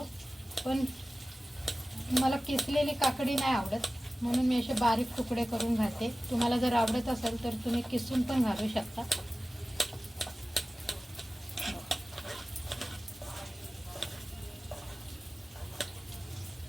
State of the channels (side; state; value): both; normal; correlation 0.96